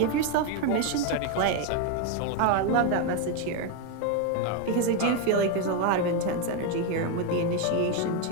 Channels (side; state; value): both; different; correlation 0.01